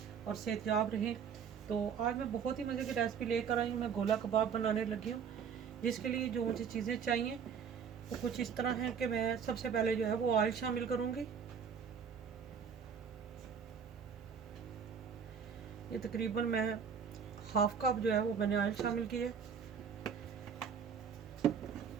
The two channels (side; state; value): left; quieter; 6.9 dB